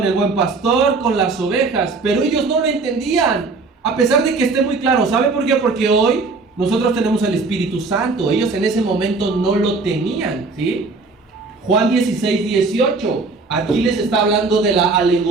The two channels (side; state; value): left; quieter; 4.0 dB